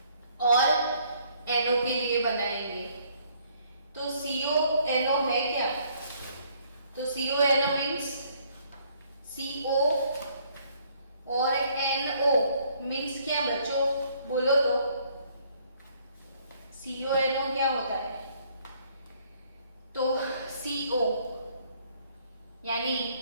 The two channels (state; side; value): inverted; both; correlation -0.64